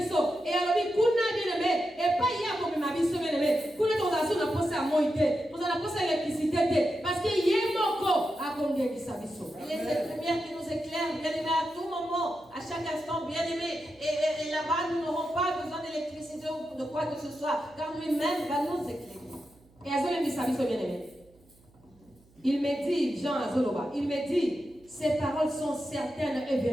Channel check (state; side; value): noise; right; hum, 29 dB below the sound